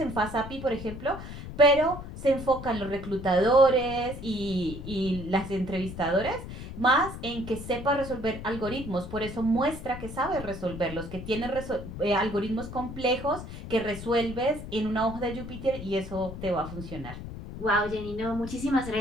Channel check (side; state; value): left; noise; rumble, 10 dB below the sound